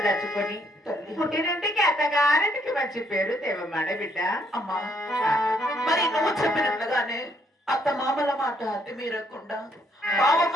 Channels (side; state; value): both; normal; correlation 0.69